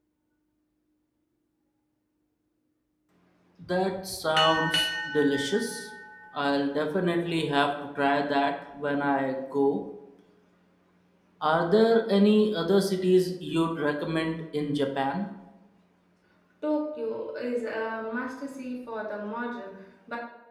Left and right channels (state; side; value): identical; both; correlation 1.00